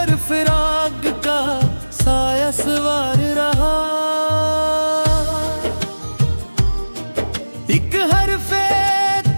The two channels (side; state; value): both; inverted; correlation -1.00